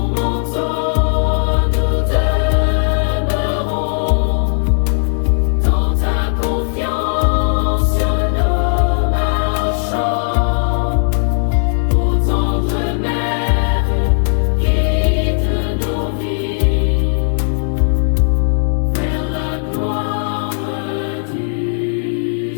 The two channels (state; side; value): silent; right; digital silence